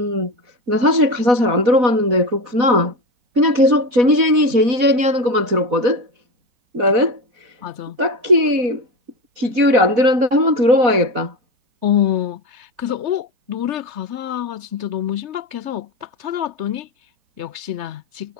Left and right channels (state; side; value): late; left; 4.1 ms